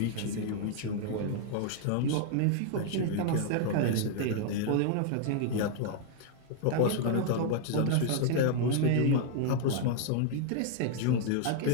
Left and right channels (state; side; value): different; both; correlation 0.00